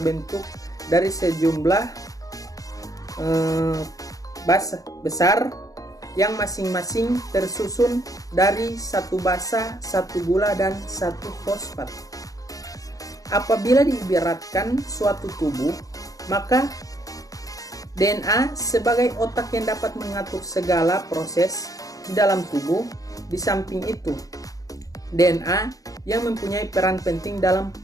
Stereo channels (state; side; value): late; right; 0.17 ms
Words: dari sejumlah besar yang masing-masing tersusun dari satu basa, satu gula, dan satu fosfat. Apabila diibaratkan suatu tubuh, maka DNA sebagai otak yang dapat mengatur segala proses di dalam tubuh. Di samping itu, DNA yang mempunyai peran penting dalam